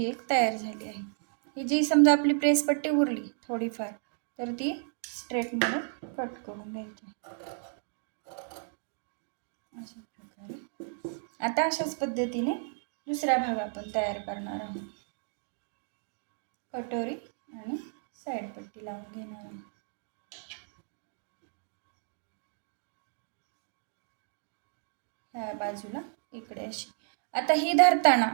एक तयार झाली आहे. ही जी समजा आपली प्रेस पट्टी उरली थोडीफार तर ती स्ट्रेटमध्ये कट करून घ्यायची अशा प्रकारे. आता अशाच पद्धतीने दुसरा भाग आपण तयार करणार आहोत. कटोरी आणि साईड पट्टी लावून घेणार आहोत. ह्या बाजूला इकडे अशी. आता ही धरताना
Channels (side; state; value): left; silent; digital silence